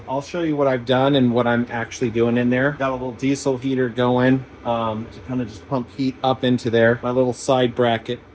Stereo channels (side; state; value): both; identical; correlation 1.00